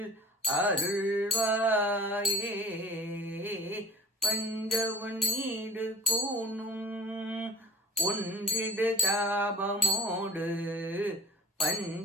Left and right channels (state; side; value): normal; both; correlation 0.44